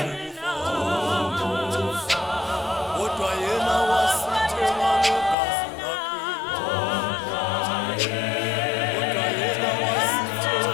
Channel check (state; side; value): drops out; right; at 5.4 s